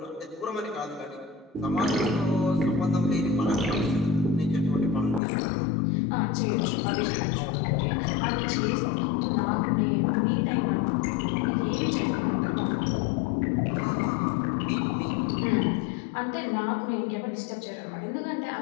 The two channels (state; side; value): drops out; right; at 5.2 s